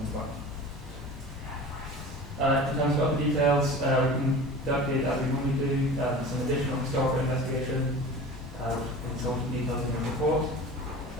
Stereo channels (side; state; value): both; normal; correlation 0.37